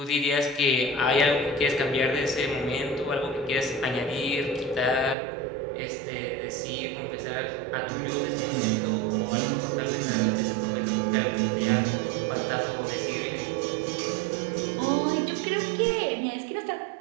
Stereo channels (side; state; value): left; drops out; at 5.2 s